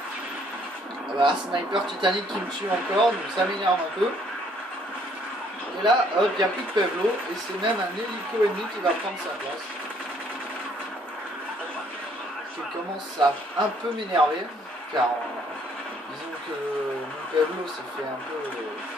Voilà, sniper Titanic qui me tue encore, donc ça m'énerve un peu. Et là, hop, il n'y a plus de Pablo, et c'est même un hélico ennemi qui va prendre sa place. Je commence à un peu m'énerver, car disons que mon Pablo s'est fait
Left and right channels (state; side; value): normal; both; correlation 0.64